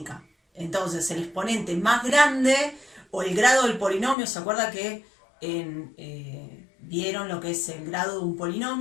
Entonces el exponente más grande o el grado del polinomio, ¿se acuerda que vieron lo que es el grado de un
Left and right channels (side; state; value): right; drops out; at 4.2 s